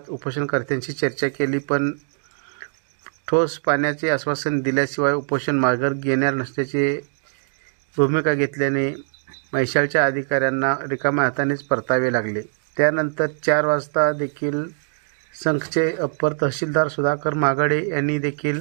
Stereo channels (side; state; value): left; silent; digital silence